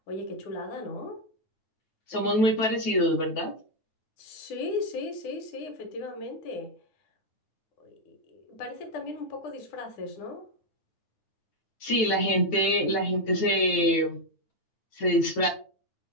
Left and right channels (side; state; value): right; late; 9.3 ms